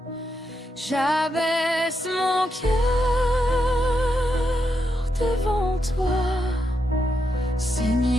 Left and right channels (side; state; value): both; normal; correlation 0.83